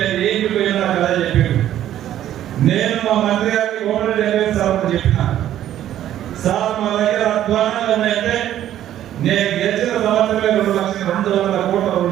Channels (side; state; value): left; quieter; 11.9 dB